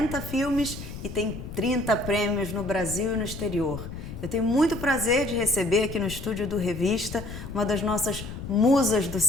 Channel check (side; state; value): left; noise; rumble, 10 dB below the sound